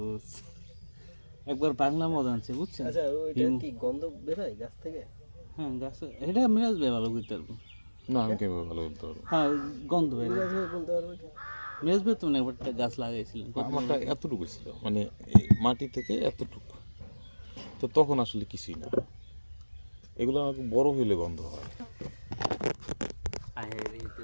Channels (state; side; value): inverted; both; correlation -1.00